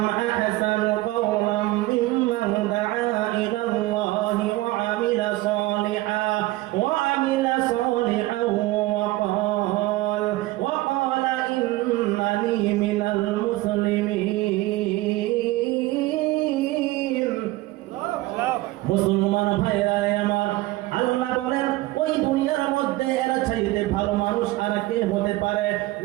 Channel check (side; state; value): left; quieter; 18.6 dB